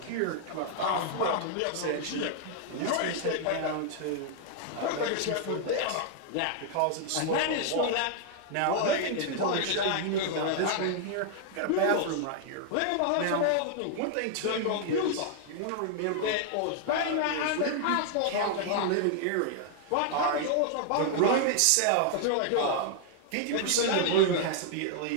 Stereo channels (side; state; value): both; different; correlation -0.01